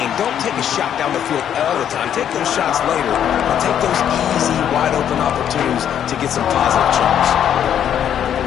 Don't take a shot down the field all the time. Take those shots later. But take those easy, wide-open opportunities to get some positive chunks.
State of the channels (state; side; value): quieter; right; 9.6 dB